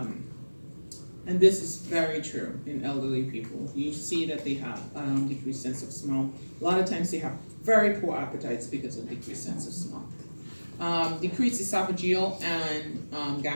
And this is very true in elderly people. You see that they have decreased sense of smell. A lot of times they have very poor appetites because of decreased sense of smell. Decreased esophageal and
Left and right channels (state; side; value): inverted; both; correlation -1.00